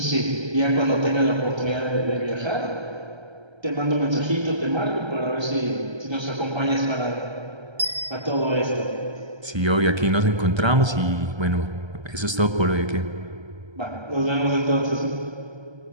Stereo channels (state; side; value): late; left; 1.3 ms